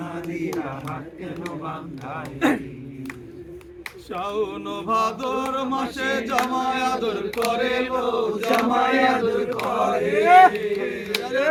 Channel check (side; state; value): both; identical; correlation 1.00